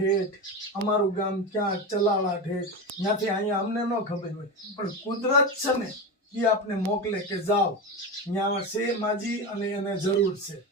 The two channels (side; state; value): both; normal; correlation 0.20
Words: અમારું ગામ ક્યાં ચલાળા ઠેઠ, ત્યાંથી અહીંયા અમને ન ખબર હોય, પણ કુદરત છે ને એ આપને મોકલે કે જાઓ ત્યાં છે માજી અને એને જરૂર છે.